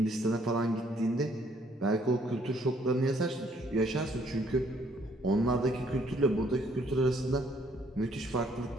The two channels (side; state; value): both; normal; correlation 0.65